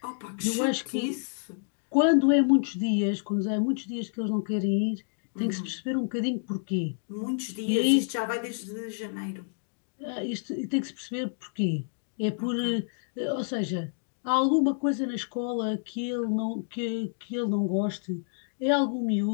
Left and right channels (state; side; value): silent; right; digital silence